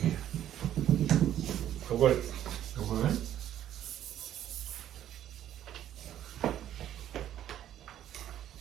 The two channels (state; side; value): quieter; left; 11.4 dB